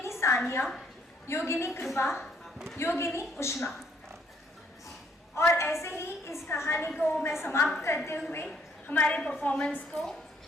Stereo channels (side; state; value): both; normal; correlation 0.68